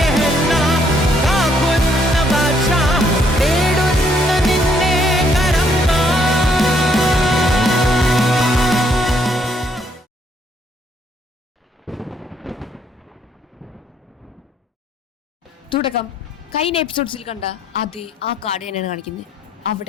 തുടക്കം കഴിഞ്ഞ എപ്പിസോഡ്സിൽ കണ്ട അതേ ആ കാർഡ് തന്നെയാണ് കാണിക്കുന്നത്.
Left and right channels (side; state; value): both; normal; correlation 0.69